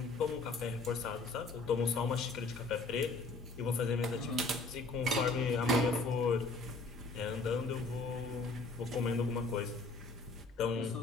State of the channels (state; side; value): quieter; right; 3.6 dB